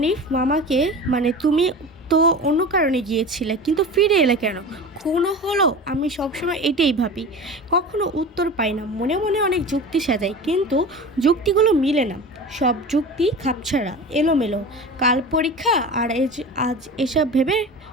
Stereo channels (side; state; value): both; normal; correlation 0.33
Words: মামাকে মানে তুমি তো অন্য কারণে গিয়েছিলে, কিন্তু ফিরে এলে কেন? খুনও হলো? আমি সবসময় এটাই ভাবি, কখনো উত্তর পাই না। মনে মনে অনেক যুক্তি সাজাই, কিন্তু যুক্তিগুলো মিলে না। সব যুক্তি খাপছাড়া, এলোমেলো। কাল পরীক্ষা আর আজ এসব ভেবে